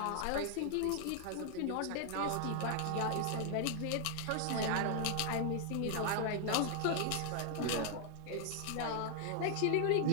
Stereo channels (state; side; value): different; both; correlation 0.00